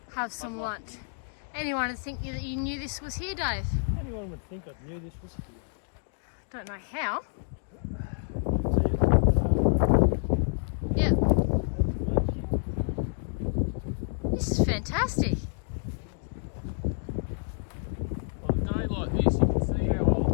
have some lunch. Anyone would think that you knew this was here, Dave? Anyone would think I knew this was here. Don't know how. See it? Yeah. This is fantastic. On a day like this, you can see how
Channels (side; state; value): right; silent; digital silence